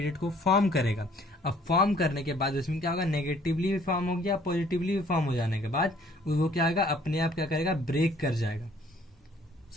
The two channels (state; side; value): normal; both; correlation 0.59